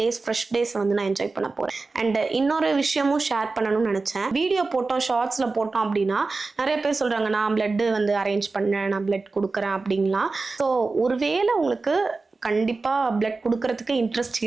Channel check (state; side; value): quieter; left; 3.8 dB